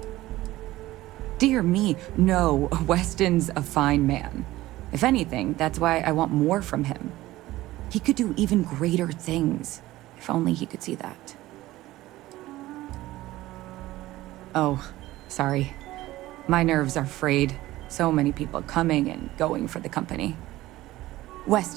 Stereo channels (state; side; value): quieter; left; 16.8 dB